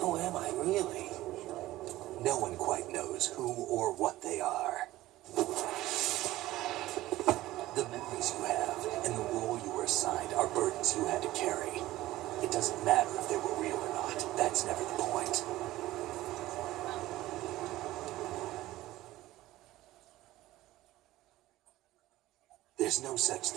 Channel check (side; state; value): left; quieter; 16.4 dB